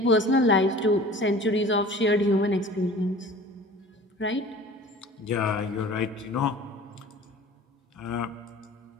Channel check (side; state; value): both; normal; correlation 0.44